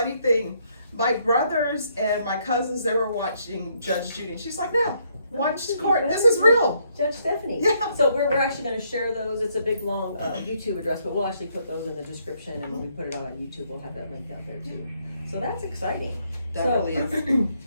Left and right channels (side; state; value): both; inverted; correlation -0.72